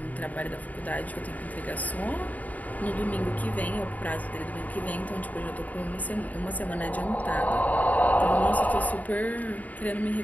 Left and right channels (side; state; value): right; late; 0.075 ms